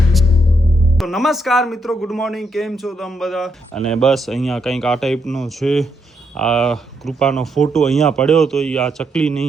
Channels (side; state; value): both; normal; correlation 0.78